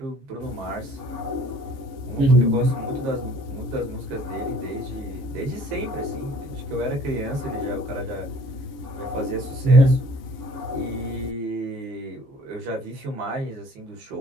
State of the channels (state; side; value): late; left; 15 ms